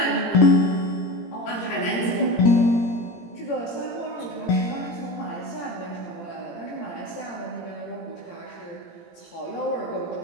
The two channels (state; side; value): late; right; 17 ms